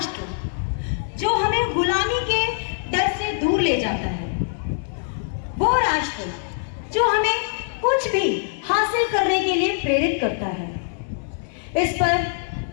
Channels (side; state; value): right; silent; digital silence